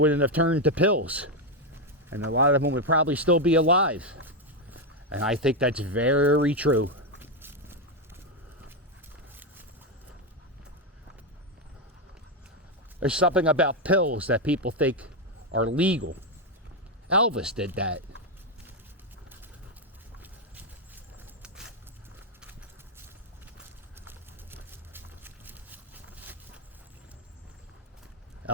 have turned to pills. And a lot of them would probably still be alive. And I think that's very true. There's something about pills that people think are legal. Elvis did that.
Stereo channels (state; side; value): normal; both; correlation 0.05